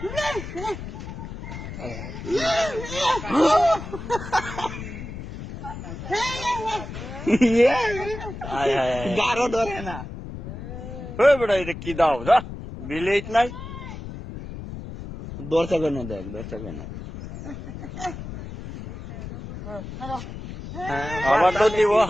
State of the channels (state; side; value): noise; left; rumble, 10 dB below the sound